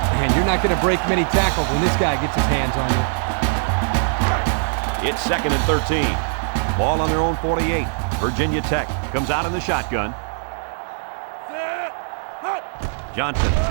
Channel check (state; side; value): silent; left; 65 dB below the other